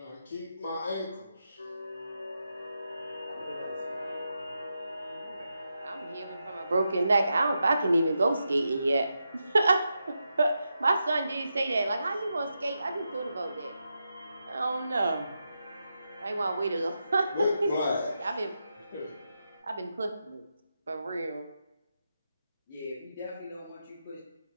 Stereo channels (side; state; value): both; inverted; correlation -0.87